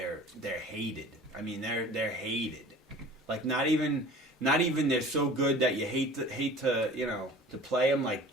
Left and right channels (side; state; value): both; normal; correlation 0.43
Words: hated. I mean, they're hated. Like not even they're so good that you hate to play them, like